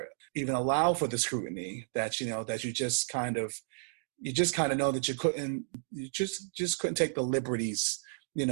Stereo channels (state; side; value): silent; left; digital silence